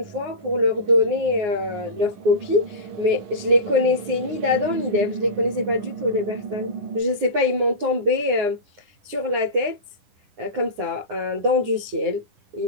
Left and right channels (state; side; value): late; left; 9.7 ms